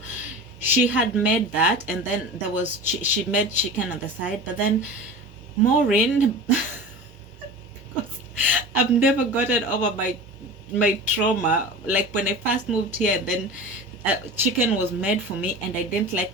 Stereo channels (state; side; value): normal; both; correlation 0.33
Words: she had made that, and then there was she made chicken on the side. But then Maureen, because I've never gotten over my trauma, like when I first moved here, then chicken was made for me and I didn't